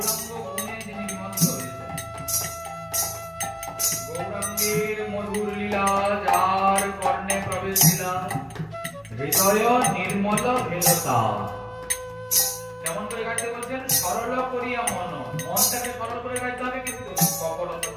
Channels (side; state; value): both; identical; correlation 1.00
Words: গুণে যিনি নিমগ্ন হয়েছেন। গৌরাঙ্গের মধুর লীলা যার কর্ণে প্রবেশ দিলা, হৃদয় নির্মল ভেলতা। কেমন করে গাইতে বলছেন? সরল করিয়া মন, মনটাকে সরল করে গাইতে হবে, কিন্তু কপটতা